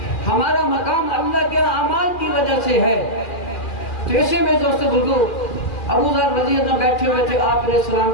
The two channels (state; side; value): late; right; 2.4 ms